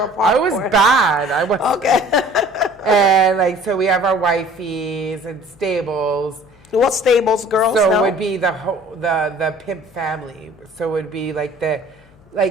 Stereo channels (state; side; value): noise; left; hum, 28 dB below the sound